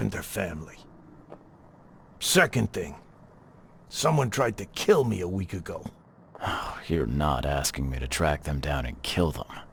family. Second thing. Someone tried to kill me a week ago. Oh, you're not asking me to track them down and kill them,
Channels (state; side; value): identical; both; correlation 1.00